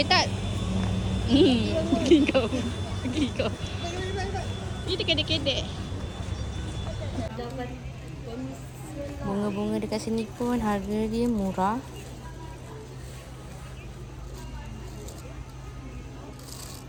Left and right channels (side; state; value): both; identical; correlation 1.00